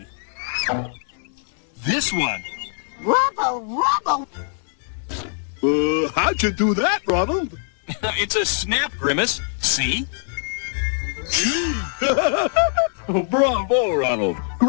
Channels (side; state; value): right; silent; digital silence